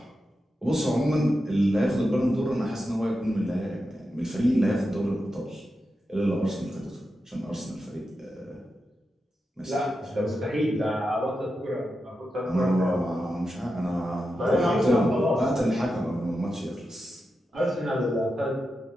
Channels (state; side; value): normal; both; correlation 0.89